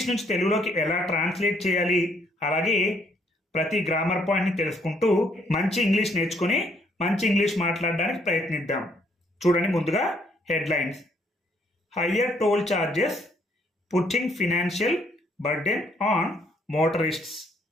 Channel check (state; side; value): normal; both; correlation 0.68